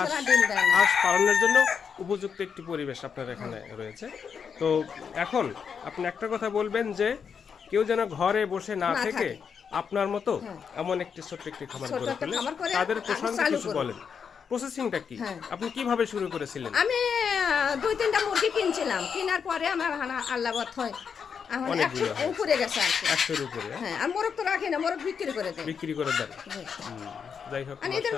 ডিম দেয় না। হাঁস পালনের জন্য উপযুক্ত একটি পরিবেশ আপনার এখানে রয়েছে। তো এখন আপনি একটা কথা বলবেন যে কেউ যেন ঘরে বসে না থেকে আপনার মতো এমন একটি ছোট্ট একটি খামার ছোট্ট গড়ে একটা তোলে, খামার করে তাদের আমি প্রসঙ্গে চালু কিছু করব। বলেন। প্রসেসিংটা কি? হ্যাঁ। আপনি কিভাবে শুরু করেছিলেন? আমি 2-3টা মুরগি কিনছিলাম, কেনার পরে আমার আল্লাহ বত হয়, এখন অনেকগুলো 100 উপরে গেছে আর কি। 100-এর উপরে হ্যাঁ, আর মোরগ তো রাখি না, মোরগ বিক্রি করে দেয়। বিক্রি করে দেন। জি। যাই হোক, আর এদের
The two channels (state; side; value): quieter; right; 6.6 dB